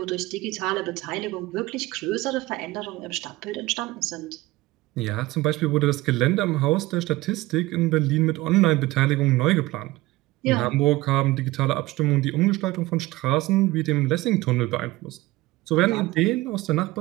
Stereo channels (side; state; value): left; quieter; 19.0 dB